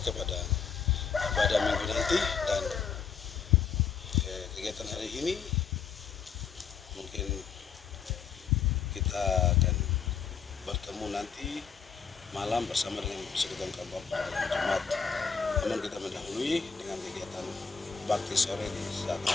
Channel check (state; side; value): quieter; right; 6.3 dB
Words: pada minggu nanti. Dan kegiatan hari ini mungkin kita akan bertemu nanti malam bersama dengan persekutuan kaum bapak dalam jemaat. Namun kita mendahului dengan kegiatan bakti sore di saat